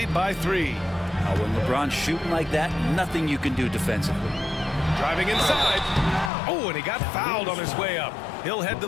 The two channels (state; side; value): drops out; right; at 6.3 s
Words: by 3. Now, when LeBron's shooting like that, nothing you can do defensively. Driving inside. Oh, and he got fouled on his way up. He'll head to